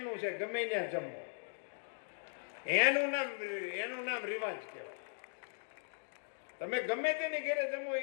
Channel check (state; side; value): silent; right; digital silence